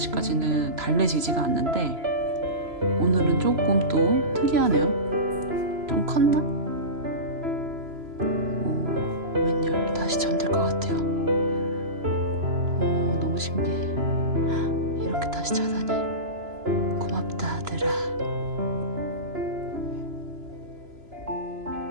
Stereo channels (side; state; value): left; late; 2.9 ms